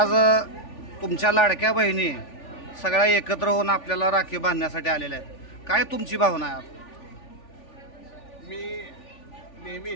तुमच्या लाडक्या बहिणी सगळ्या एकत्र होऊन आपल्याला राखी बांधण्यासाठी आलेल्या आहेत। काय तुमची भावना आहे? मी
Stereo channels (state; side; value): late; right; 3.4 ms